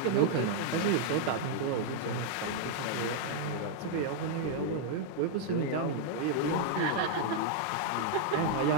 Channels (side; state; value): both; different; correlation -0.01